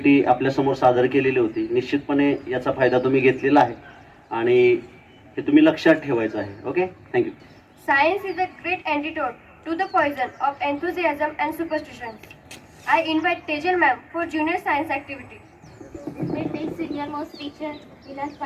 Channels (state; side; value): identical; both; correlation 1.00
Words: आपल्यासमोर सादर केलेली होती. निश्चितपणे याचा फायदा तुम्ही घेतलेला आहे आणि हे तुम्ही लक्षात ठेवायचं आहे. Okay, thank you. Science is a great antidote to the poison of enthusiasm and superstitions. I invite Tejal ma'am for junior science activity. My next senior most teacher, Vilas